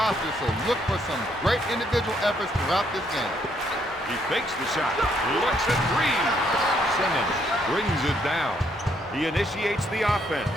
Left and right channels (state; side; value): normal; both; correlation 0.71